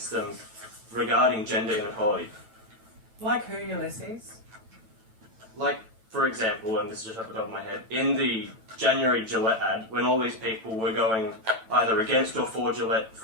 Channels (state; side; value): late; left; 9.0 ms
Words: them regarding gender inequality. Like who, Ulysses? Like, for example, and this is just off the top of my head, in the January Gillette ad, when all these people were going either against or for Gillette